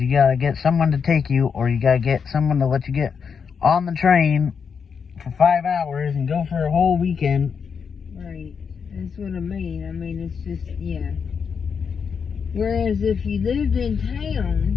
gotta get someone to take you, or you gotta get someone to let you get on the train for 5 hours and go for a whole weekend. Right. That's what I mean. I mean, it's just, yeah. Whereas if you lived in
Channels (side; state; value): right; quieter; 6.3 dB